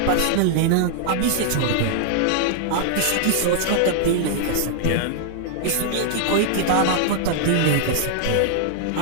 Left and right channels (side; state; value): both; different; correlation -0.01